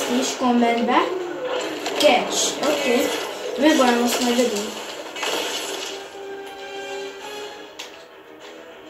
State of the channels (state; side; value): identical; both; correlation 1.00